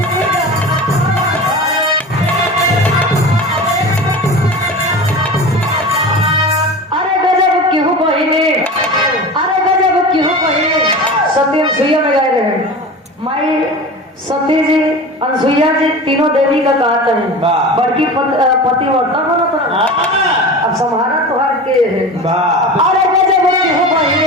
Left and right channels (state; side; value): normal; both; correlation 0.32